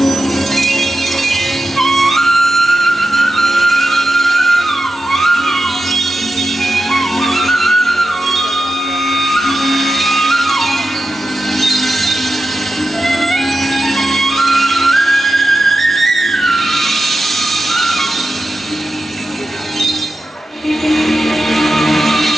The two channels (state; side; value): normal; both; correlation 0.91